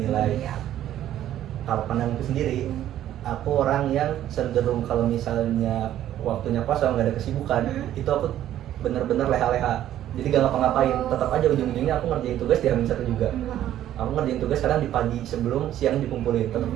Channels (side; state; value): left; quieter; 12.1 dB